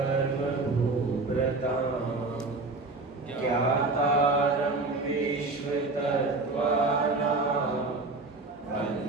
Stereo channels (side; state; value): left; quieter; 3.4 dB